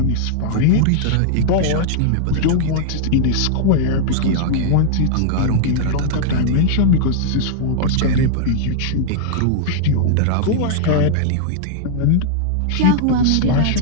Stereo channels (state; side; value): different; both; correlation -0.01